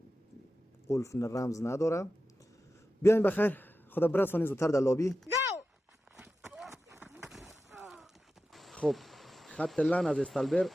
قلف رمز نداره. بیاین بخیر خدا برسونید زودتر در لابی. خب خط لن از استالبر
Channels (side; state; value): both; normal; correlation 0.92